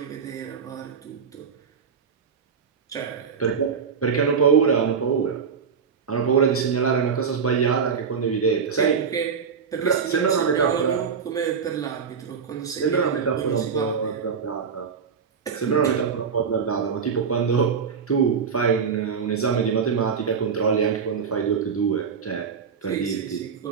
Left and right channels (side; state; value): left; quieter; 6.3 dB